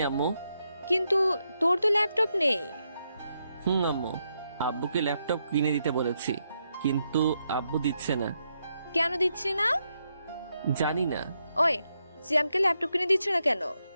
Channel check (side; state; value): both; inverted; correlation -0.81